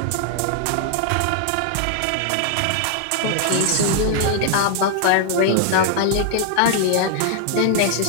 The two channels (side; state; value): both; different; correlation 0.00